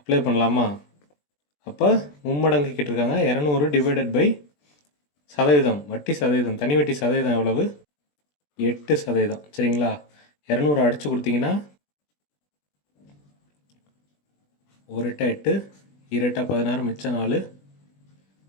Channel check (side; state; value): right; late; 20 ms